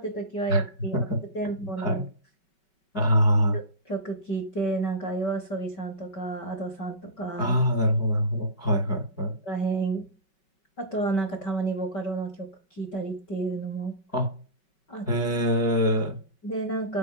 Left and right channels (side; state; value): right; late; 5.3 ms